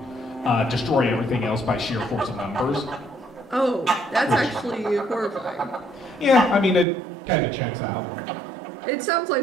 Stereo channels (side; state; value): left; drops out; at 6.9 s